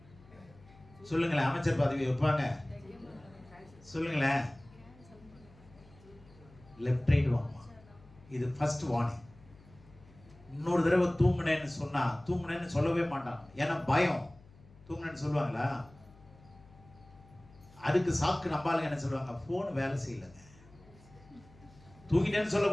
சொல்லுங்களேன். அமைச்சர் பதவி வைப்பாங்க? சொல்லுங்களேன். லெஃப்ட் ரைட் வாங்குமா. இது ஃபர்ஸ்ட் வார்னிங். இன்னொரு தடவை தூங்குனேன்னு சொன்னா, தூங்குனேன்னு சொல்லவே மாட்டான். ஏன்னா பயம். தூங்குனேன்னு சொல்லுவாங்களா? அதுக்கு சாக்கு நம்பாளுங்க என்ன சொல்லுவாங்க, போன் வேலை செய்யலைங்க. தூங்கிட்டேன்னு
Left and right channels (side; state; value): left; noise; hum, 24 dB below the sound